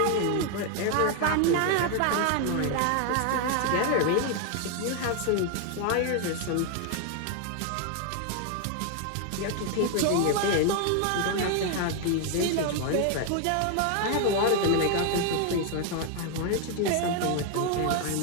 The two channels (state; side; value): different; both; correlation 0.01